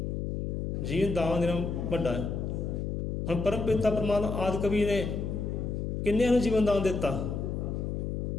ਜੀਵਨ ਦਾਨ ਦੇਣਾ ਵੱਡਾ ਹੈ। ਹੁਣ ਪਰਮ ਪਿਤਾ ਪਰਮਾਤਮਾ ਆਦਿ ਕਵੀ ਨੇ ਕਿੰਨਿਆਂ ਨੂੰ ਜੀਵਨ ਦਾਨ ਦਿੱਤਾ?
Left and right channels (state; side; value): noise; left; hum, 2 dB below the sound